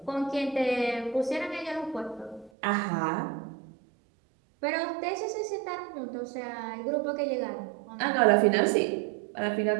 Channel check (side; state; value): left; drops out; at 2.5 s